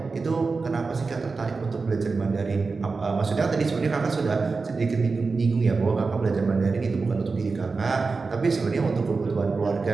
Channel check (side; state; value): left; quieter; 4.3 dB